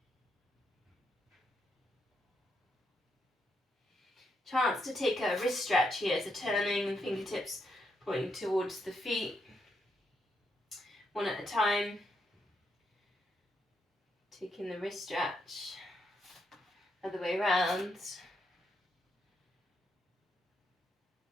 Chance to take a wrist stretch here, so turning and fingertips pointing towards the feet, one at a time. Taking the wrist stretch, other way around.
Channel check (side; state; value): both; normal; correlation 0.79